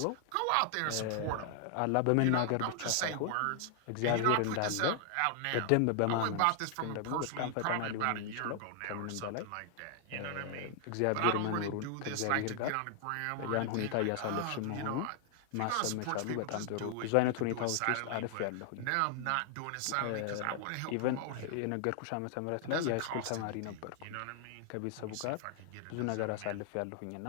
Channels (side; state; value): both; different; correlation 0.00